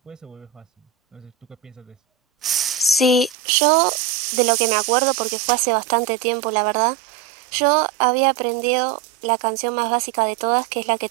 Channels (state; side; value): drops out; left; at 3.4 s